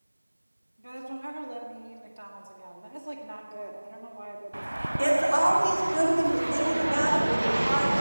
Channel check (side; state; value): both; inverted; correlation -1.00